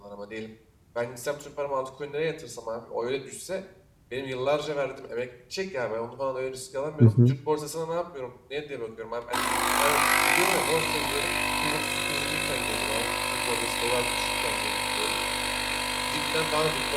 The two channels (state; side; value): identical; both; correlation 1.00